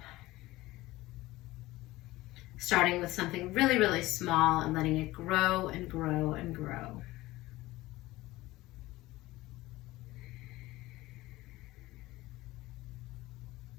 Starting with something really, really small and letting it grow and grow and grow.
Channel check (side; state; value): right; quieter; 18.4 dB